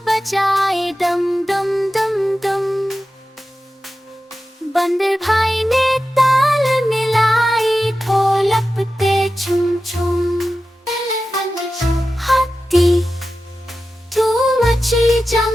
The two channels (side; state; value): both; normal; correlation 0.93